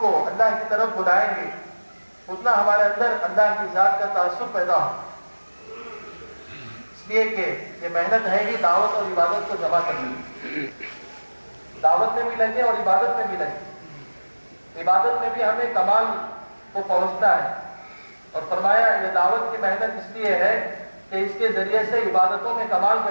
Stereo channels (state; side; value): inverted; both; correlation -1.00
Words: اللہ کی طرف بلائیں گے اتنا ہمارے اندر اللہ کی ذات کا تاثر پیدا ہوگا۔ اس لیے کہ یہ محنت ہے ہی دعوت اور عبادت کو جمع کرنے، دعوت میں بھی لگے اور عبادت میں بھی لگے۔ عبادت میں بھی ہمیں کمال کو پہنچنا ہے، اور فرمایا یہ دعوت کی محنت اس لیے ہے کہ اس کے ذریعے سے عبادتوں میں کمال